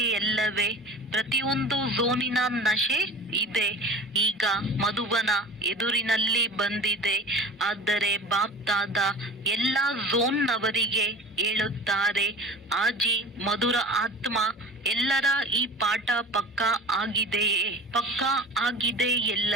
ಎಲ್ಲವೇ? ಪ್ರತಿಯೊಂದು ಝೋನಿನ ನಶೆ ಇದೆ. ಈಗ ಮಧುಬನ ಎದುರಿನಲ್ಲಿ ಬಂದಿದೆ. ಆದರೆ ಬಾಪ್ ದಾದಾ ಎಲ್ಲ ಝೋನ್ನವರಿಗೆ ಹೇಳುತ್ತಾರೆ, ಆಜಿ ಮಧುರ ಆತ್ಮ ಎಲ್ಲರ ಈ ಪಾಠ ಪಕ್ಕಾ ಆಗಿದೆಯೇ? ಪಕ್ಕಾ ಆಗಿದೆ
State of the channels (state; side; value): normal; both; correlation 0.38